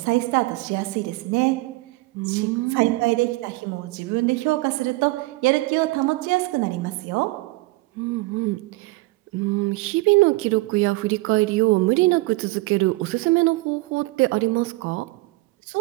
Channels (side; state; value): left; quieter; 22.3 dB